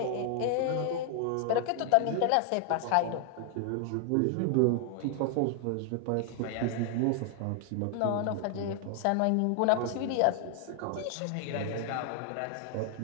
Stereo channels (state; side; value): different; both; correlation 0.00